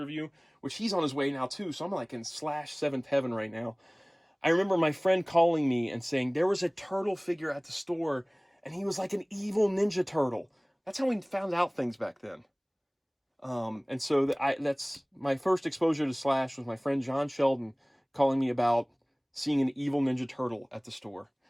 which he's on his way now too, so I'm like in Slash 7th heaven right now. I remember my friend calling me and saying there was a turtle figure at the store, and he was like an evil Ninja Turtle. That's how we found out things back then. And so that's my first exposure to Slash was my friend John Sheldon calling me about seeing an evil Ninja Turtle at the store.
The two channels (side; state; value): both; identical; correlation 1.00